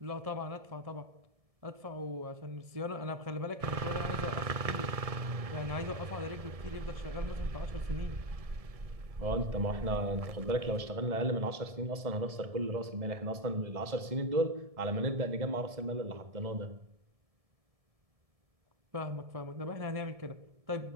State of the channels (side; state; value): left; late; 1.7 ms